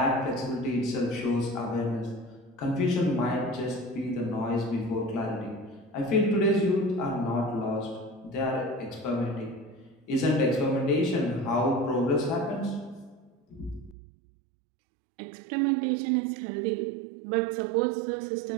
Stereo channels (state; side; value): drops out; left; at 14.0 s